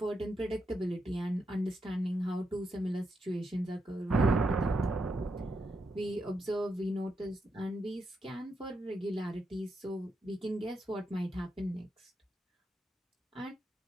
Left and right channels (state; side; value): normal; both; correlation 0.83